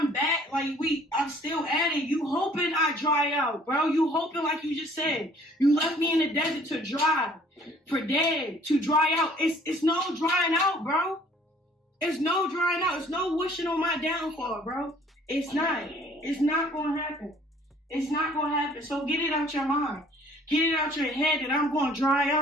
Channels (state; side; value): normal; both; correlation 0.56